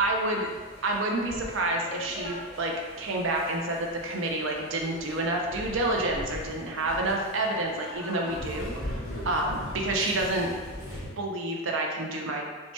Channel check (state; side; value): normal; both; correlation 0.08